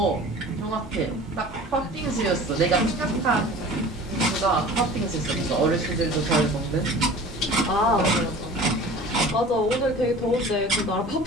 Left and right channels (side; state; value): both; normal; correlation 0.41